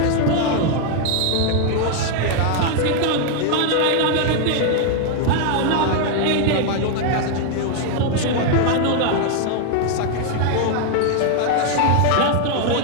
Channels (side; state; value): both; different; correlation 0.00